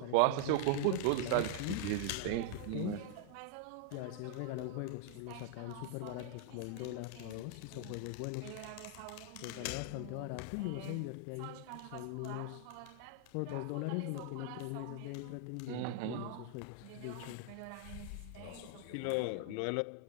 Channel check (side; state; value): both; different; correlation 0.00